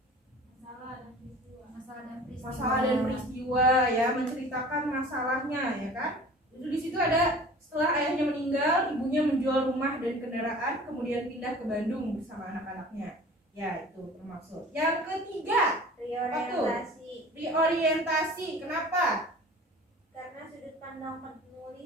Masalah dan peristiwa ya, menceritakan masalahnya ya kan. Itu di situ ada setelah ayahnya meninggal, ibunya menjual rumah dan kendaraan, kemudian pindah ke Bandung bersama anak-anaknya. Ya, itu termasuk. Yang ketiga, Reorientasi. Reorientasi. Kenapa? Karena sudut pandang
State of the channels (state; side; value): normal; both; correlation 0.43